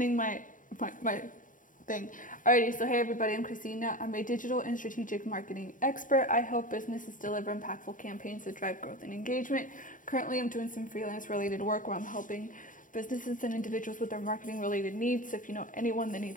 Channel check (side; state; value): right; late; 0.38 ms